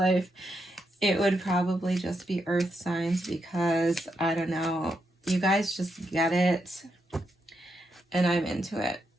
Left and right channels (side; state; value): both; normal; correlation 0.82